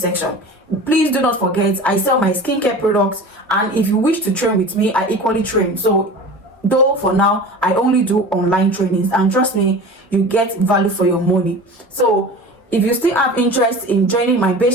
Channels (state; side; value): normal; both; correlation 0.36